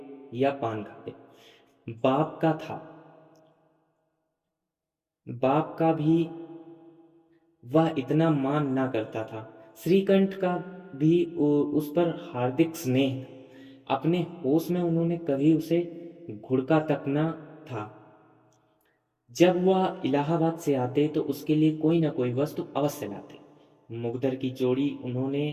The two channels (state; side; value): identical; both; correlation 1.00